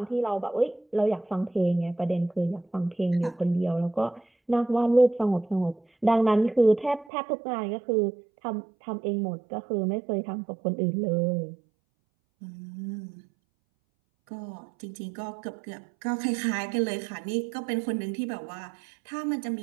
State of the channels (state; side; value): drops out; left; at 7.1 s